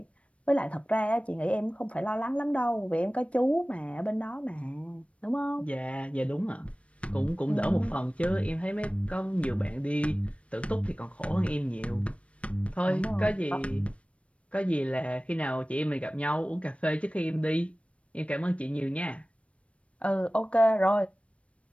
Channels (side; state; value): right; late; 0.062 ms